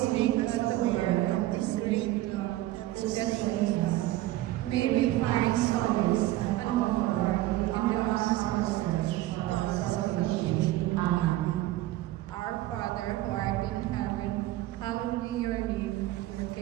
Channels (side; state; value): left; quieter; 15.9 dB